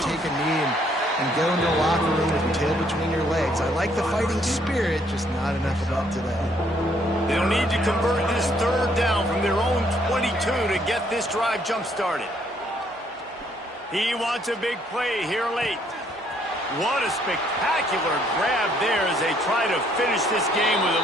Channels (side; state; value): both; normal; correlation 0.67